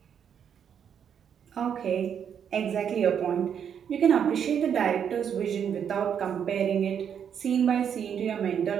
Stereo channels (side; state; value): left; quieter; 8.1 dB